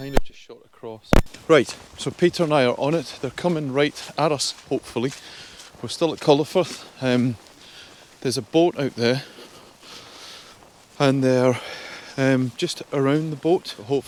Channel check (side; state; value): both; identical; correlation 1.00